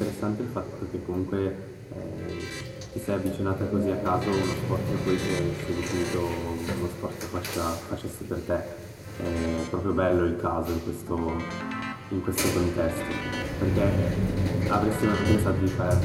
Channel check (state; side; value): identical; both; correlation 1.00